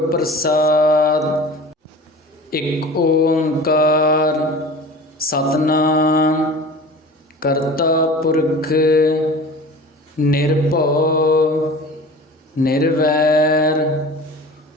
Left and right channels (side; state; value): both; normal; correlation 0.38